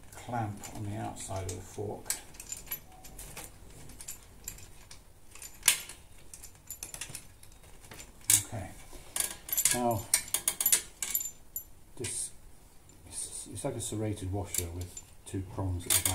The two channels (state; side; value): identical; both; correlation 1.00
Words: clamp on the outside of the fork. Okay, now this it's like a serrated washer with 2 prongs at the